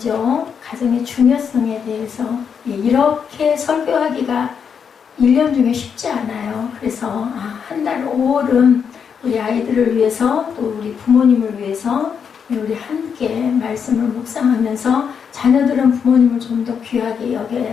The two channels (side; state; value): right; quieter; 6.9 dB